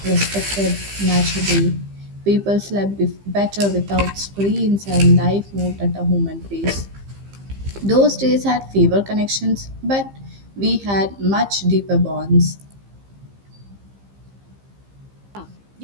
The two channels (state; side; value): late; left; 15 ms